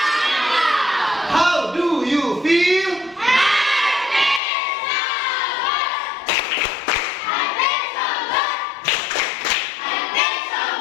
How do you feel?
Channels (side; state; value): right; drops out; at 4.4 s